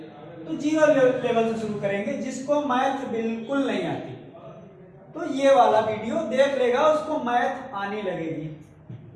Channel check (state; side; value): identical; both; correlation 1.00